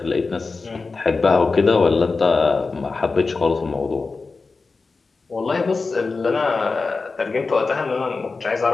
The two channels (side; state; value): right; quieter; 4.1 dB